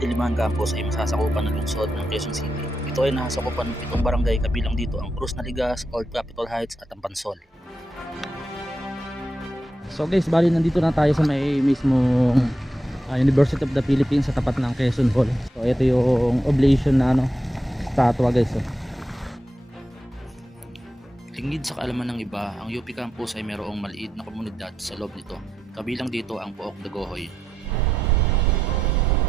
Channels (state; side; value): normal; both; correlation 0.86